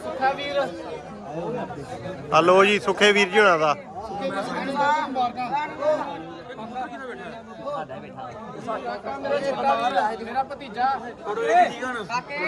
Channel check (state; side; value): identical; both; correlation 1.00